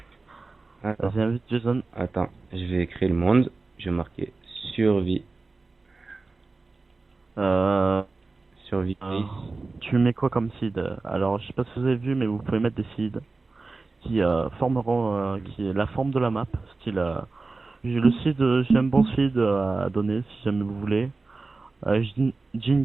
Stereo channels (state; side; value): quieter; left; 3.7 dB